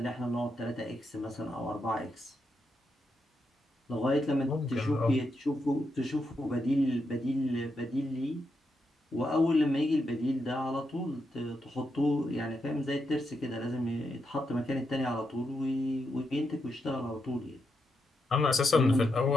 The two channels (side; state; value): both; normal; correlation 0.83